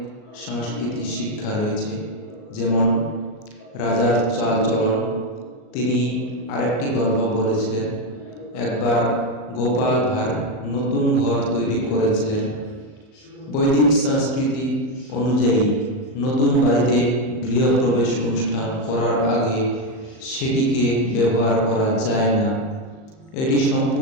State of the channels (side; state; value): right; late; 38 ms